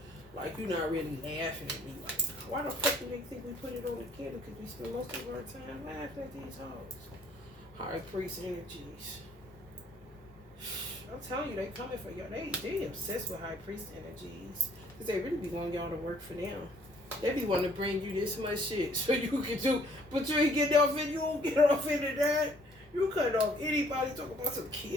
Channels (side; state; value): left; noise; hum, 30 dB below the sound